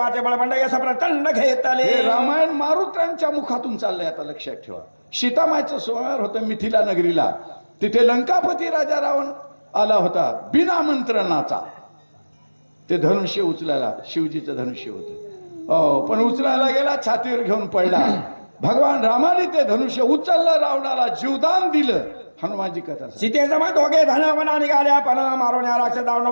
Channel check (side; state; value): both; inverted; correlation -1.00